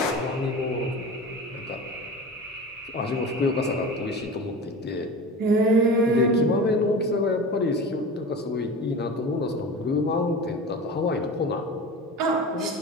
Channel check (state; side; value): normal; both; correlation 0.32